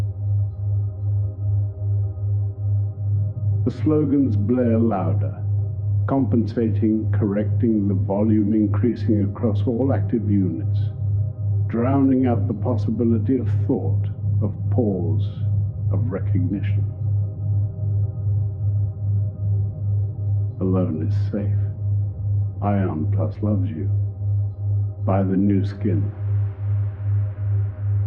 The slogans blare louder, compensating, correcting, the volume increasing across all active units, drowning out the possibility of thought, of pause, of recognition. Alone is safe. Ion Plus loves you. Buy the new skin.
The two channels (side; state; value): both; identical; correlation 1.00